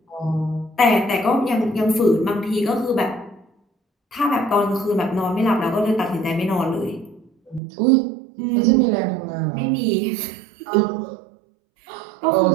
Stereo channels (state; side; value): drops out; left; at 7.6 s